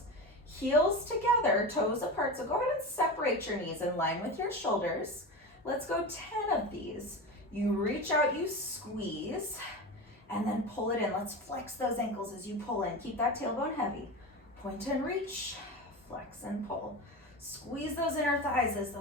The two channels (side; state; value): both; normal; correlation 0.25